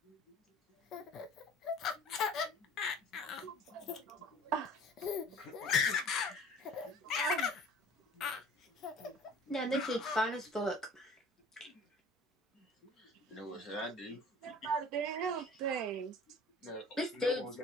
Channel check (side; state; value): both; normal; correlation 0.46